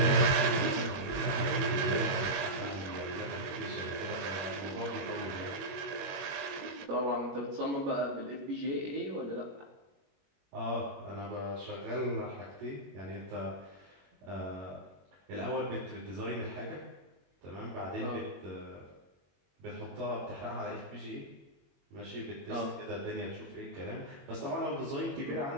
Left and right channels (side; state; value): left; late; 21 ms